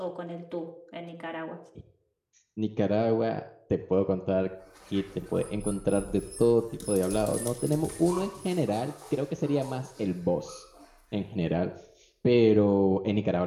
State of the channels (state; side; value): identical; both; correlation 1.00